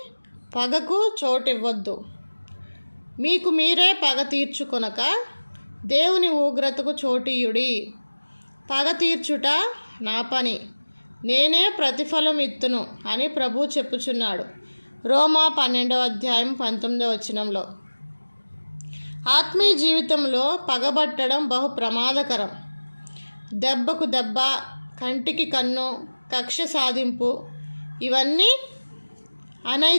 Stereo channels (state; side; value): inverted; both; correlation -1.00